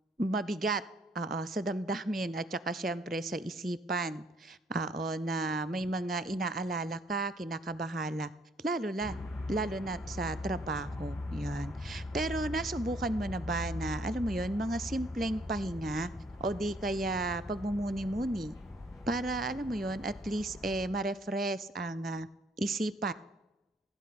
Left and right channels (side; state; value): both; normal; correlation 0.65